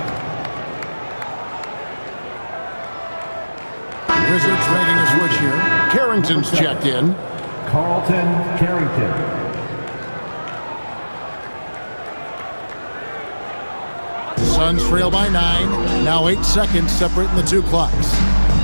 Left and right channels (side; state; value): both; inverted; correlation -1.00